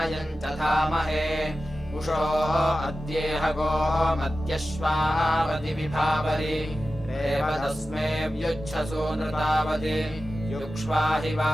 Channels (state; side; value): normal; both; correlation 0.93